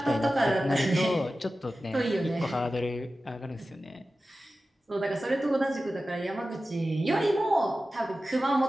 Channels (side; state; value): both; normal; correlation 0.94